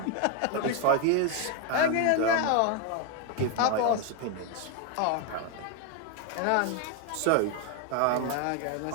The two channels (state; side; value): different; both; correlation 0.01